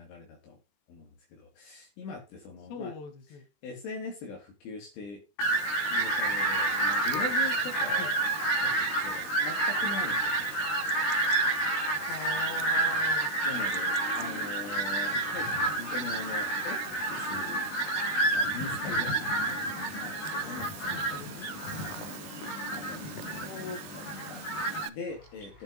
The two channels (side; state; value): right; late; 20 ms